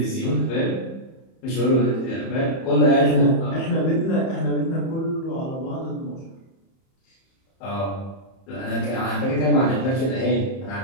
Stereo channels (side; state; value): right; late; 31 ms